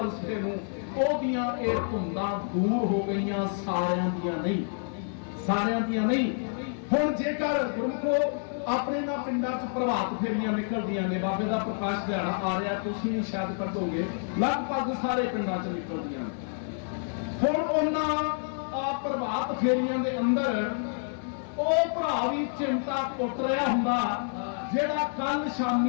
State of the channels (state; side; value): silent; right; 59 dB below the other